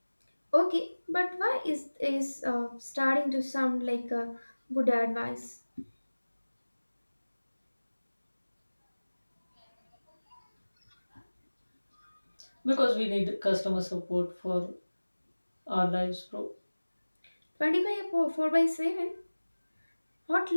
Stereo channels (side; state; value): both; inverted; correlation -1.00